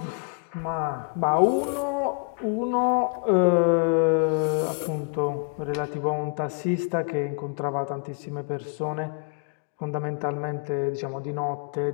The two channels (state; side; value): quieter; right; 38.3 dB